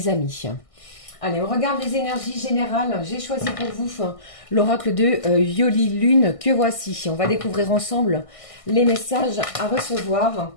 amis. Allez, on regarde les énergies générales. J'ai choisi pour vous l'oracle de Yoli Lune que voici. On va découvrir ensemble les messages à recevoir.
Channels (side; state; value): right; late; 1.6 ms